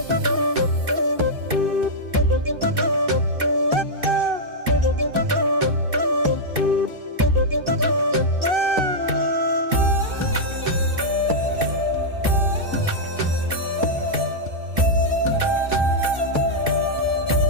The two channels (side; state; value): left; late; 2.6 ms